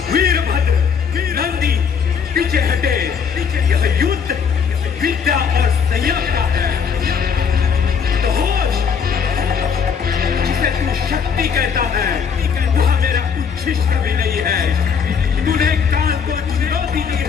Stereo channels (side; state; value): right; quieter; 6.6 dB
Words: वीरभद्र, नंदी, पीछे हटे। यह युद्ध विद्या और संयम का है। जिसे तू शक्ति कहता है, वह मेरा उच्छिष्ट भी नहीं है। तूने काल को चुनौती दी